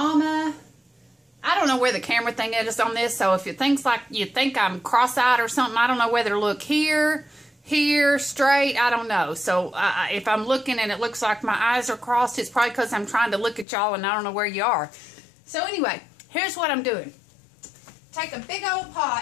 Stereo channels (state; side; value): drops out; right; at 13.7 s